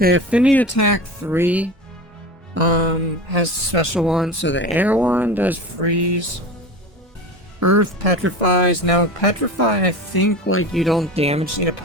affinity attack 3 has a special one. So the air one does freeze. Earth petrifies. Now petrify, I think like you don't damage the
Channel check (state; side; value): normal; both; correlation 0.30